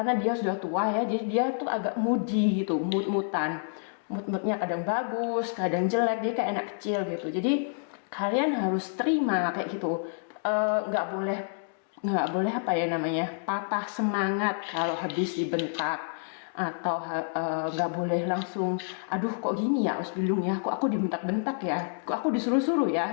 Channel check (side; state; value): right; silent; digital silence